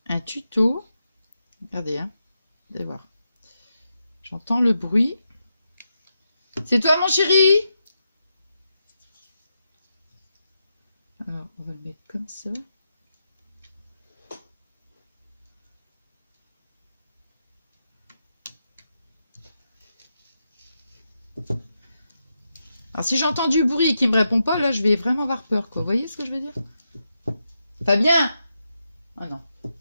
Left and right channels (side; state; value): both; inverted; correlation -0.86